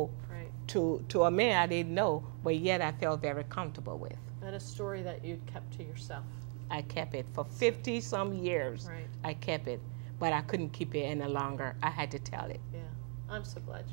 to a man I didn't know, but yet I felt very comfortable with. And a story that you'd kept to yourself. I kept it for 50-some years. Right. I kept it, but I couldn't keep it any longer. I had to tell it. Yeah. I'm so glad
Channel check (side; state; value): left; quieter; 35.7 dB